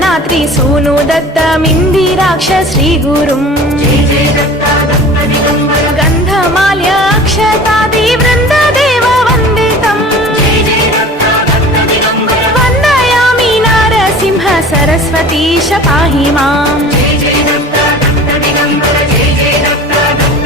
सूनु दत्त मिंदिराक्ष श्री गुरुम गंधमाल्य अक्षतादि वृंद देव वंदितम वंदयामि नारसिंह सरस्वतीश पाहि माम्।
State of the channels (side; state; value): both; normal; correlation 0.41